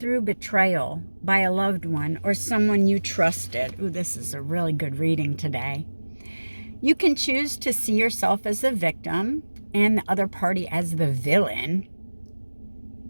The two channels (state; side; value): inverted; both; correlation -1.00